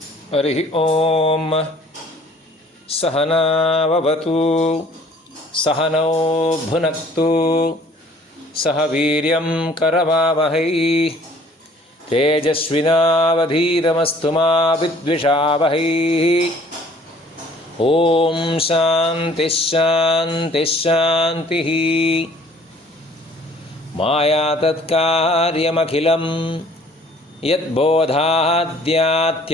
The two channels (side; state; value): both; normal; correlation 0.54